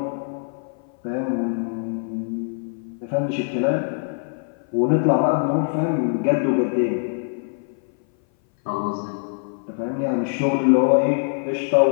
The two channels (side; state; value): right; silent; 58 dB below the other